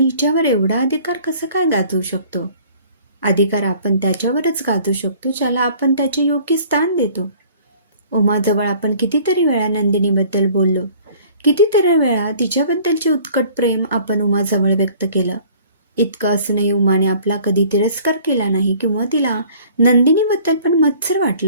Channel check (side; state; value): both; inverted; correlation -0.53